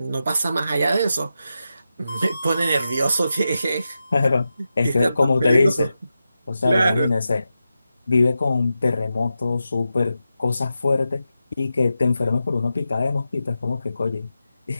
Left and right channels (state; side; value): inverted; both; correlation -0.90